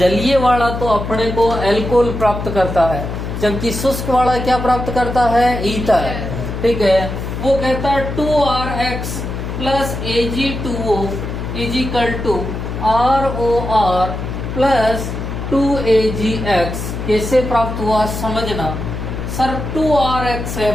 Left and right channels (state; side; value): noise; left; hum, 5 dB below the sound